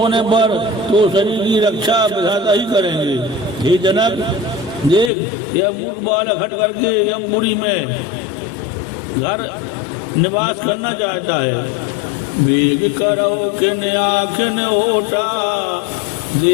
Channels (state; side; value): drops out; right; at 5.1 s